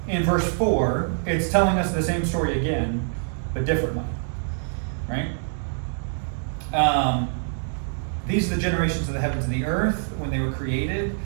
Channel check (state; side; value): silent; left; digital silence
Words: in verse 4, it's telling us the same story again, but differently. Right? These are the generations of the heavens and the earth when they were created,